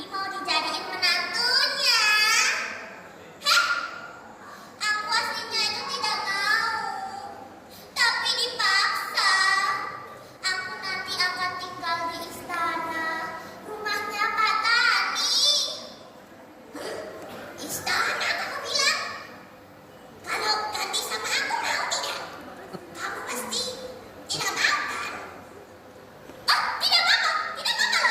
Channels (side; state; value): both; identical; correlation 1.00